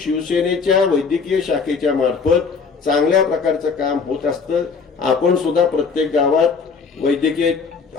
वैद्यकीय शाखेच्या मार्फत चांगल्या प्रकारचं काम होत असतं. आपण सुद्धा प्रत्येक गावात वैद्यकीय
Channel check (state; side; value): quieter; right; 5.2 dB